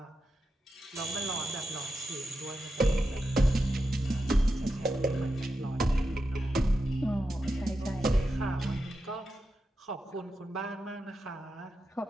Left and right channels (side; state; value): both; normal; correlation 0.88